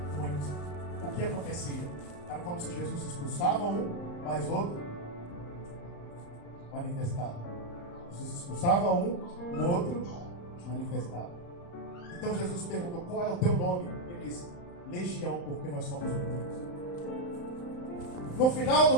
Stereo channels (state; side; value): late; right; 35 ms